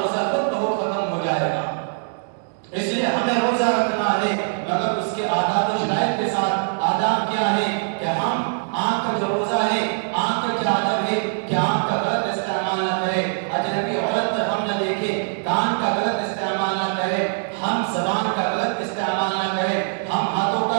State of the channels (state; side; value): silent; left; digital silence